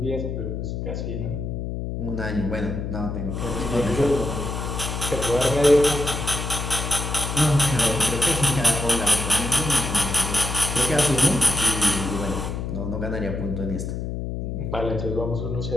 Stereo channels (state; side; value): noise; left; hum, 4 dB below the sound